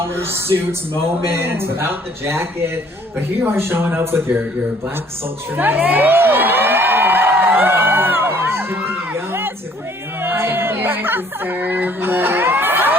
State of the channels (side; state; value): both; normal; correlation 0.59